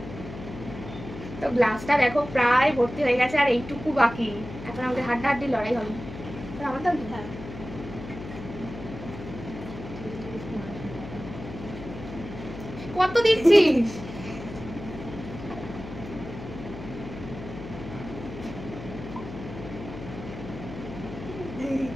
তো গ্লাসটা দেখো প্রায় ভর্তি হয়ে গেছে, আর এইটুকু বাকি। এখন আমাদের হাড্ডাহাড্ডি লড়াই হবে। আমার দাম হ্যাঁ, কত দিচ্ছিস?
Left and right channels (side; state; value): left; noise; hum, 11 dB below the sound